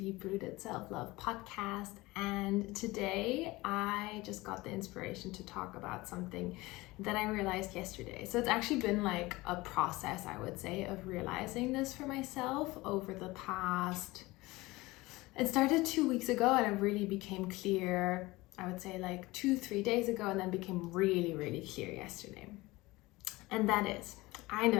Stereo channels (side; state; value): right; quieter; 20.8 dB